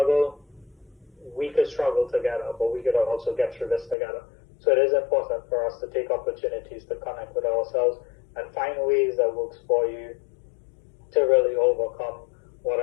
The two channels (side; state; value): right; drops out; at 4.0 s